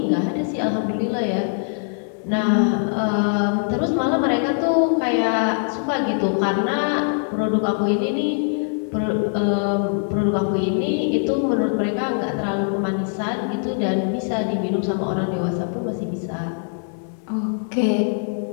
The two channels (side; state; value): right; silent; digital silence